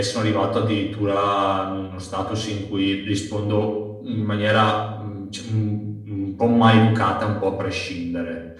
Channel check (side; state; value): both; identical; correlation 1.00